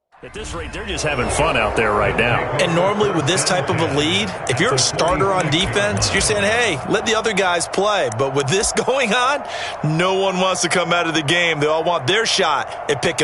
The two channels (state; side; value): identical; both; correlation 1.00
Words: At this rate, they're just having fun out there right now. And normally with this type of a lead, if you're a starter on defense, you're saying, hey, let the other guys play. But with this going on, no one wants to come out of the game. They all want their shot at